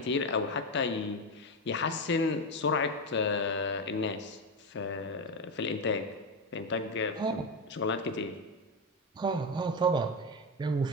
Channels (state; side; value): normal; both; correlation 0.13